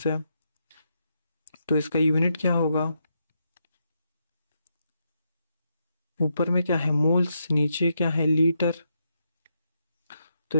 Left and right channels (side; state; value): both; inverted; correlation -0.81